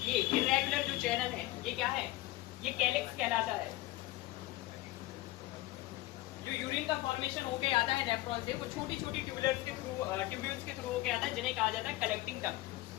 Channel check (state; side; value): quieter; right; 17.8 dB